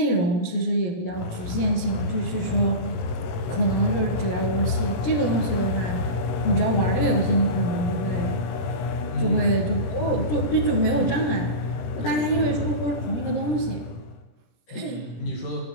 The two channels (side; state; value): right; late; 17 ms